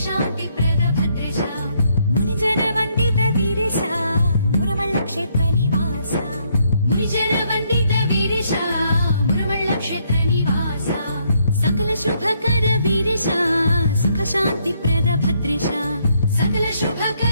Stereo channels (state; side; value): inverted; both; correlation -0.72